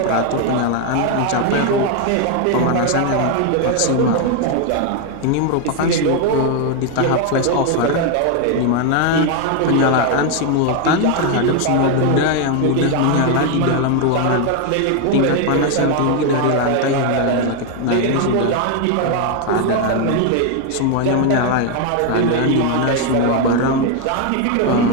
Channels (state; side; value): different; both; correlation 0.01